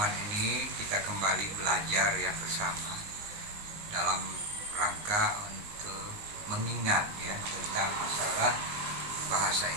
ini kita kembali belajar ya bersama dalam rangka untuk mengingat ya tentang masalah bahasa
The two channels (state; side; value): late; left; 19 ms